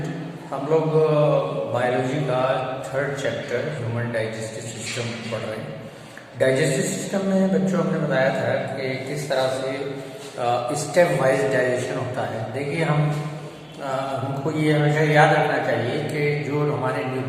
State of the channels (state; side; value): identical; both; correlation 1.00